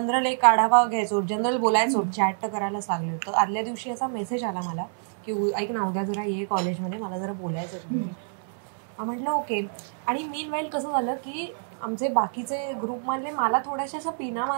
एक आढावा घ्यायचो, जनरल बोलायचो, चॅट तर करायलाच लागले. तर आदल्या दिवशी असा मेसेज आला मला की ऐक ना, उद्या जरा ये कॉलेजमध्ये, मला जरा बोलायचं. म्हटलं ओके. आणि मीन वाईल कसं झालं की आमचे बाकीचे ग्रुपमधले मला थोड्याशा असं पिना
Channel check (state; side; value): silent; left; digital silence